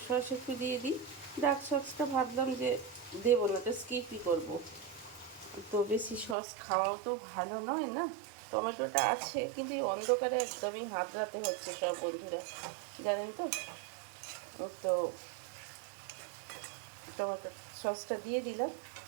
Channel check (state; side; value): drops out; left; at 6.4 s